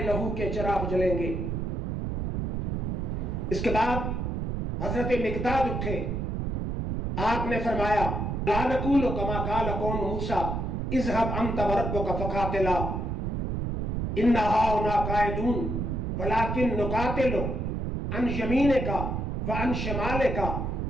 लहू के चिराग जलेंगे। इसके बाद हजरत मिकदाद उठे, आपने फरमाया ला नकूल कमा काल कौम मूसा इज़हब अंत व रब्बुका फकातिला इन्ना हाउना कायदून वलाकिन नुकातिलु अन यमीने का व अन शमाले का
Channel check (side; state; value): right; noise; rumble, 2 dB below the sound